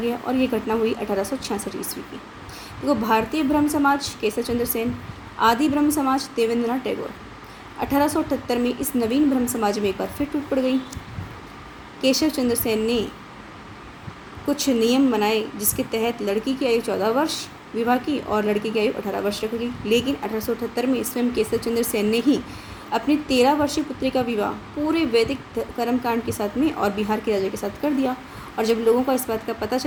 और ये घटना हुई 1866 ईस्वी की। देखो, भारतीय ब्रह्म समाज केशव चंद्र सेन, आदि ब्रह्म समाज देवेंद्रनाथ टैगोर। 1878 में इस नवीन ब्रह्म समाज में एक बार फिर टूट पड़ गई। केशव चंद्र सेन ने कुछ नियम बनाए जिसके तहत लड़की की आयु 14 वर्ष विवाह की और लड़के की आयु 18 वर्ष रख गई। लेकिन 1878 में स्वयं केशव चंद्र सेन ने ही अपनी 13 वर्षीय पुत्री का विवाह पूरे वैदिक कर्मकांड के साथ में और बिहार के राजा के साथ कर दिया। और जब लोगों को इस बात का पता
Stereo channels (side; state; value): both; identical; correlation 1.00